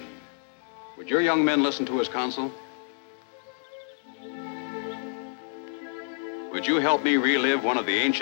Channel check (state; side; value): silent; right; digital silence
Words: Would your young men listen to his counsel? Would you help me relive one of the